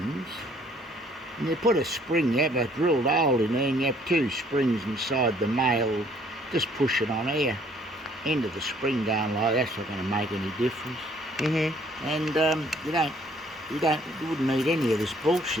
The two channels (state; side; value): normal; both; correlation 0.61